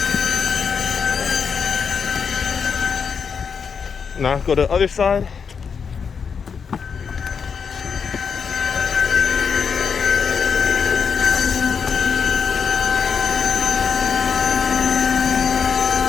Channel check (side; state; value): right; quieter; 6.2 dB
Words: Now go to the other side.